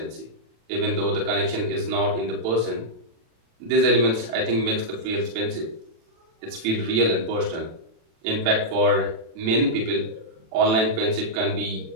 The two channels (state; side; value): late; left; 36 ms